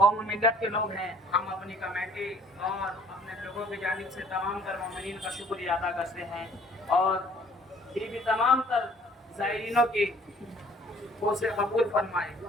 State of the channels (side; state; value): both; normal; correlation 0.56